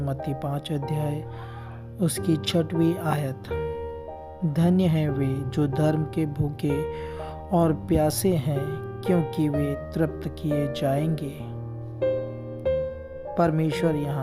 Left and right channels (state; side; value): identical; both; correlation 1.00